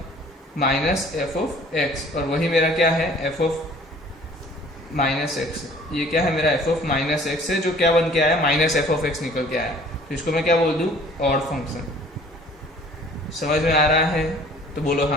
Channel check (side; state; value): both; normal; correlation 0.52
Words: माइनस एफ ऑफ एक्स, और वही मेरा क्या है एफ ऑफ माइनस एक्स। ये क्या है मेरा एफ ऑफ माइनस एक्स है, जो क्या बन के आया, माइनस एफ ऑफ एक्स निकल के आया। तो इसको मैं क्या बोल दूँ, ऑड फंक्शन। समझ में आ रहा है तो बोलो